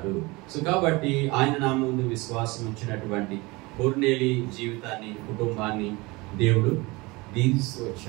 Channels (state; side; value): quieter; left; 23.8 dB